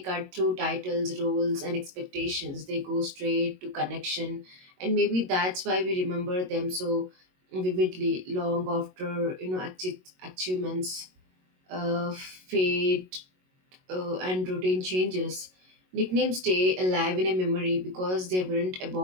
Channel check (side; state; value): left; late; 22 ms